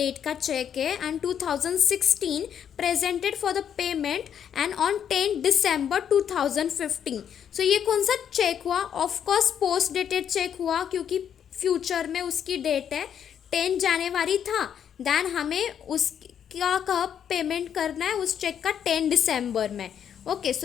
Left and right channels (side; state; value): right; quieter; 8.7 dB